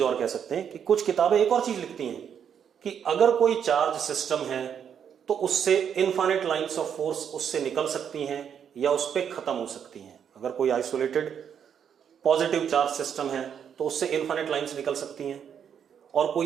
और कह सकते हैं कि कुछ किताबें एक और चीज लिखती हैं कि अगर कोई चार्ज सिस्टम है तो उससे इनफाइनाइट लाइंस ऑफ फोर्स उससे निकल सकती हैं या उस पर खत्म हो सकती हैं। अगर कोई आइसोलेटेड पॉजिटिव चार्ज सिस्टम है तो उससे इनफाइनाइट लाइंस निकल सकती हैं, और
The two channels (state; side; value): quieter; left; 8.1 dB